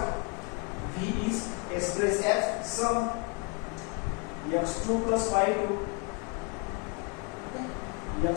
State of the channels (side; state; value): right; quieter; 30.8 dB